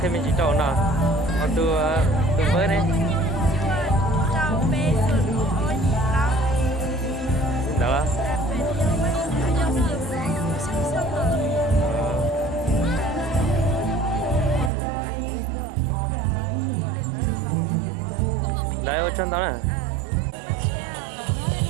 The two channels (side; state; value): left; drops out; at 14.7 s